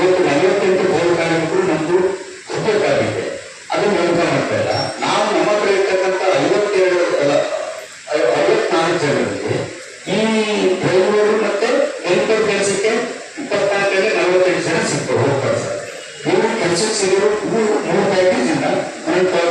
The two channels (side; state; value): both; identical; correlation 1.00